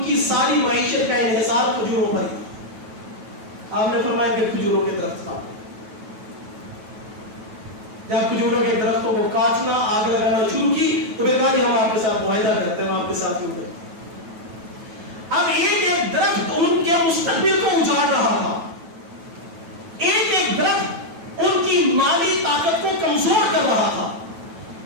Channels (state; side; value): late; left; 9.1 ms